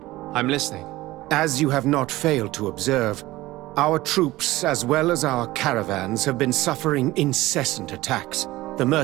I'm listening. As you have not failed to observe, our troops, as well as our caravans, have been suffering incessant attacks. The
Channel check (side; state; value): left; quieter; 18.1 dB